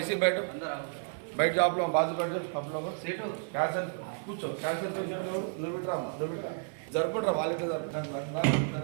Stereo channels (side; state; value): left; silent; 57 dB below the other